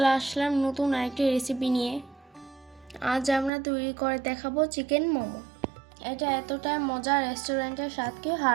আসলাম নতুন আরেকটি রেসিপি নিয়ে। আজ আমরা তৈরি করে দেখাবো চিকেন মোমো। এটা এতটা মজা, রেস্টুরেন্টের স্বাদকে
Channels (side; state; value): left; drops out; at 3.5 s